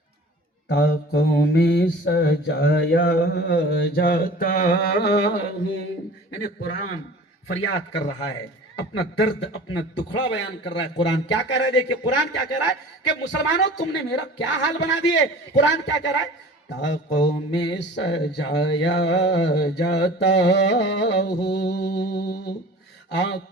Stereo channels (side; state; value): both; normal; correlation 0.42